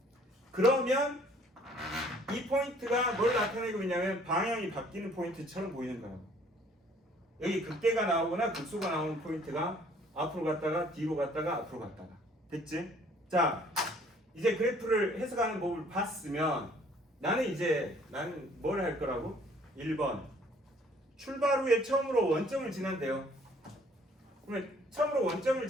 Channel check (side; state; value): both; normal; correlation 0.58